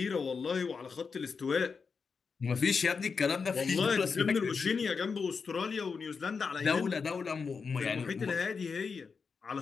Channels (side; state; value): right; quieter; 5.3 dB